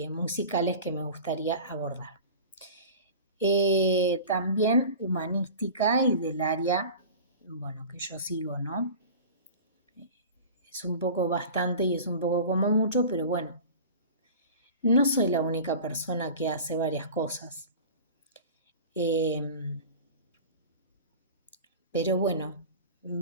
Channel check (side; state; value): both; inverted; correlation -0.37